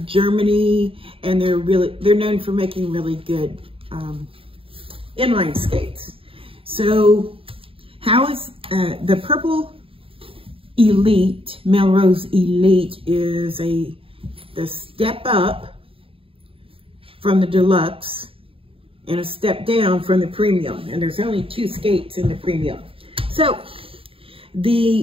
Germany, and they're known for making really good inline skates. So how is the Purple Elite, Melrose Elite is the step up from the Deluxe and a step down from the Premium. And there's only 2 skates in the Premium. So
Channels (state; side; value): late; left; 0.27 ms